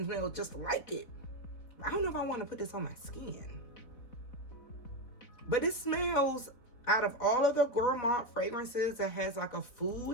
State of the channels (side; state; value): right; late; 3.9 ms